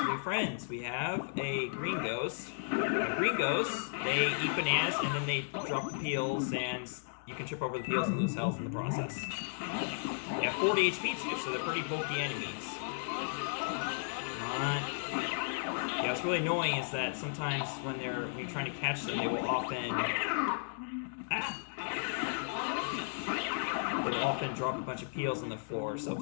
new friends. We have a green ghost. Green ghosts, they eat bananas and then they drop the peels, and you can trip over the peels and lose health in the process. They have 40 HP too, so they're pretty bulky enemies. Yeah, what's really annoying is that sometimes when you're trying to catch them, they will often drop a bunch of peels on the floor. So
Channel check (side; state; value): right; silent; digital silence